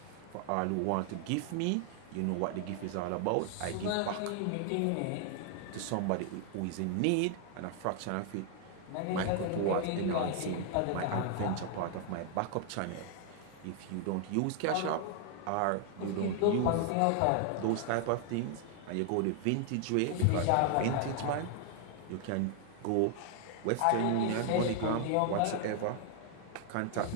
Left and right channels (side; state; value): both; different; correlation 0.00